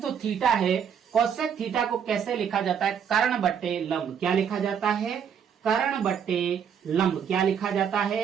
जो थीटा है, कोसेक थीटा को कैसे लिखा जाता है? कर्ण बट्टे लंब। क्या लिखा जाता है? कर्ण बट्टे लंब। क्या लिखा जाता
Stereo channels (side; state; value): left; quieter; 7.8 dB